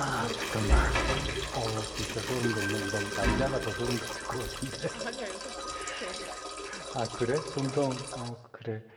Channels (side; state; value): both; identical; correlation 1.00